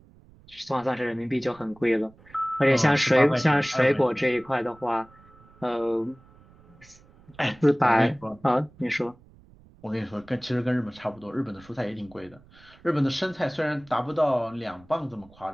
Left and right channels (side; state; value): right; noise; rumble, 26 dB below the sound